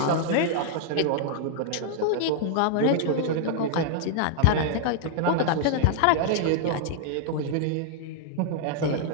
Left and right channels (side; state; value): both; different; correlation -0.01